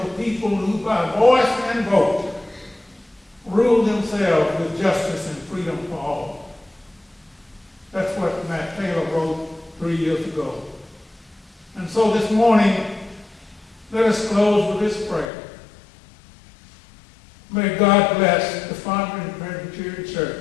a people who, by voice and vote, rule themselves with justice and freedom for all. That's what Matt Taylor wrote 3 years ago. And so this morning, let us close with this prayer. May God bless the Fondren Presbyterian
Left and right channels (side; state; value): right; drops out; at 15.3 s